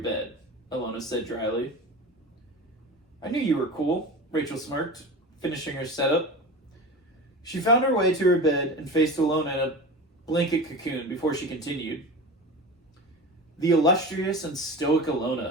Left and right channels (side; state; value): both; normal; correlation 0.31